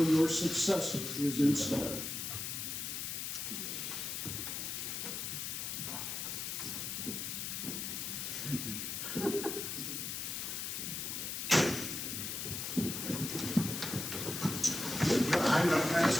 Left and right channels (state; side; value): noise; left; hiss, 3 dB below the sound